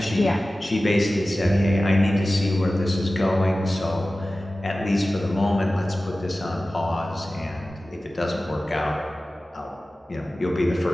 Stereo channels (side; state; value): both; normal; correlation 0.96